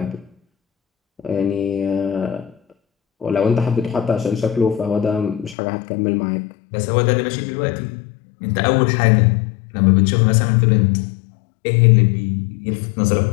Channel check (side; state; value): right; drops out; at 5.6 s